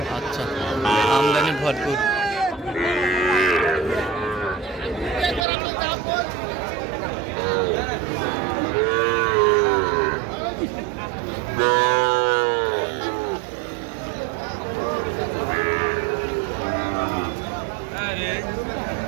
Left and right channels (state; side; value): drops out; left; at 5.5 s